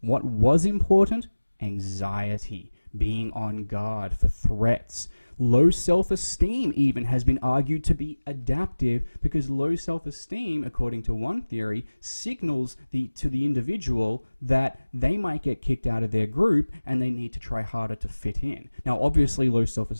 What was important? Anxiety, being on guard for threats. Low self-esteem even has been argued to be adaptive, because low self-esteem, according to one theory, signals to the individual that they might get kicked out of their group and they need to try harder to fit in. Now, obviously, low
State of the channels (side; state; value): both; inverted; correlation -1.00